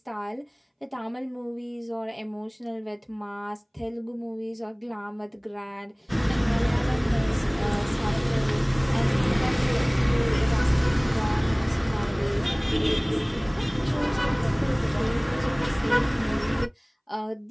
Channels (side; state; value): both; identical; correlation 1.00